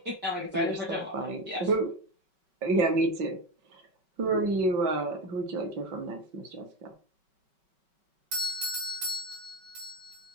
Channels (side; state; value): left; late; 5.3 ms